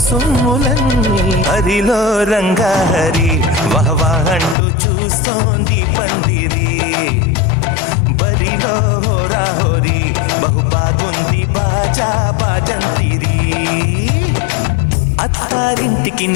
సొమ్ములన్నీ హరిలో రంగా హరి వహవా అంటూ చూస్తోంది పందిరి బరిలో హోరా హోరి బహుబాగుంది బాజా బాజంతిరి అత్తారింటికి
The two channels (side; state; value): right; drops out; at 4.5 s